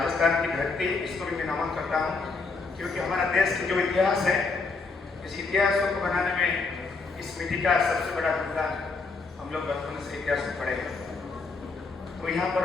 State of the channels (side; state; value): right; quieter; 4.2 dB